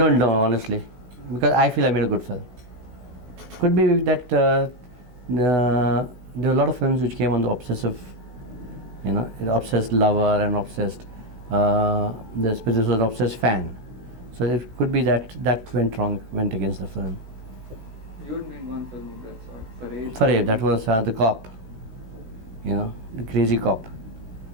know, honestly, because I feel I made a good film. Could be that there are a lot of films which came on the obsessive, an obsessed lover and obsessed, this was an obsessed fan. So it could be that went wrong, went against the film. You had made one film of that sort, Fareed, that was the cop, the crazy cop.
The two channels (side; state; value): left; late; 16 ms